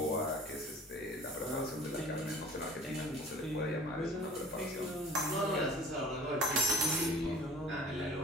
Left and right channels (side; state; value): both; normal; correlation 0.46